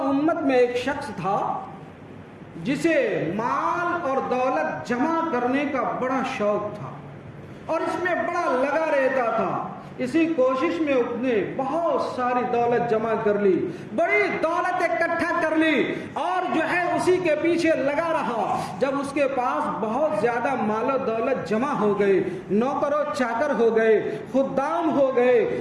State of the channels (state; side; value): identical; both; correlation 1.00